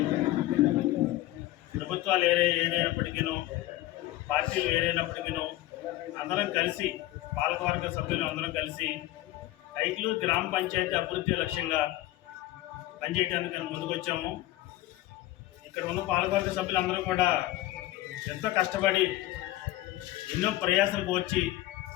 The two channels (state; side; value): quieter; right; 16.3 dB